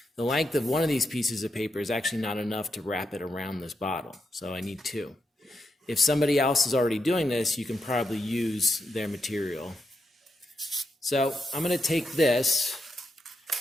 The length of one of these pieces of paper is actually not enough to wrap it around this bottle, so I need two. If somebody else is already doing this, you can probably use their material. So I'm going to take this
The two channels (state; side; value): normal; both; correlation 0.84